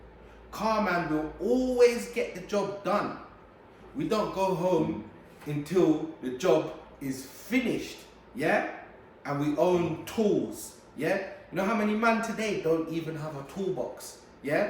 Car man will always get the job done. We don't go home until the job is finished, yeah? And we own tools, yeah? You know how many men today don't even have a toolbox,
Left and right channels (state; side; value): identical; both; correlation 1.00